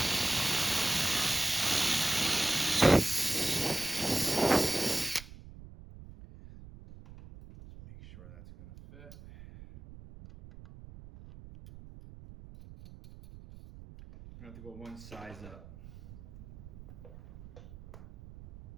Make sure that's gonna fit. I'm gonna have to go one size up.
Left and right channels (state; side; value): noise; right; rumble, 17 dB below the sound